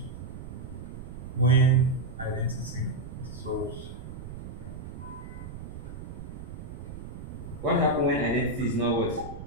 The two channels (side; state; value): right; noise; rumble, 10 dB below the sound